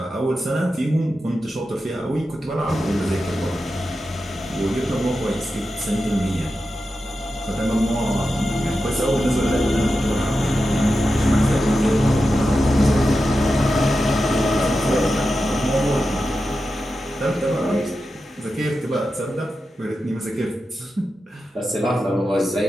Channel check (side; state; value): both; normal; correlation 0.90